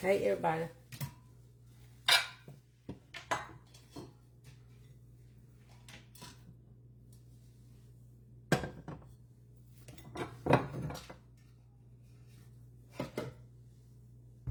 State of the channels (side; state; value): both; identical; correlation 1.00